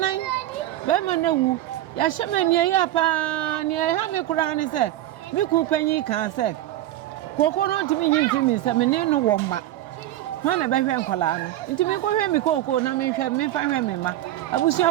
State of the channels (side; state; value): left; quieter; 14.0 dB